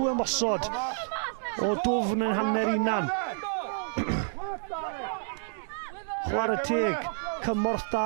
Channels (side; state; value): left; silent; digital silence